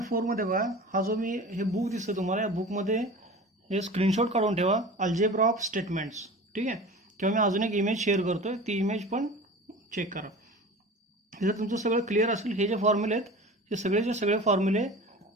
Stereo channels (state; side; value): normal; both; correlation 0.36